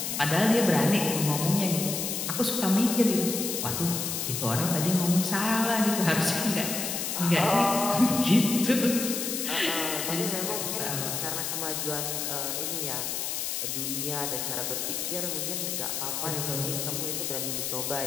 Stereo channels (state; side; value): noise; left; hiss, 2 dB below the sound